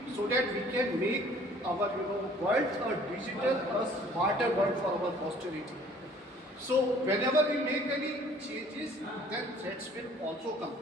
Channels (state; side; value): normal; both; correlation 0.55